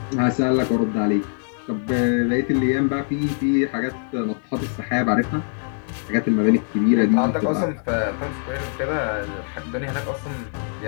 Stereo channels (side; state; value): right; silent; digital silence